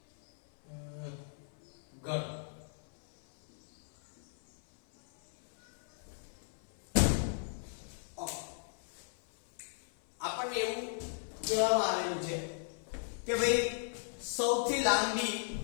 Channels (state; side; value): silent; right; 53 dB below the other